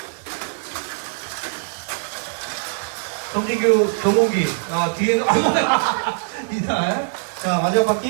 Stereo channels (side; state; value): left; silent; digital silence